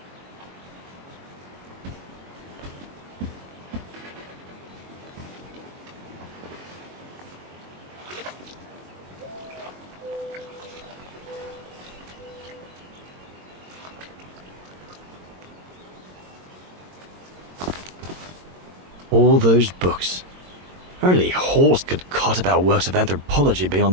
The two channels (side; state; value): left; late; 22 ms